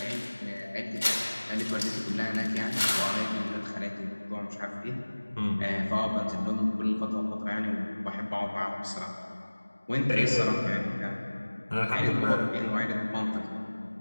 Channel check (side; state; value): both; inverted; correlation -1.00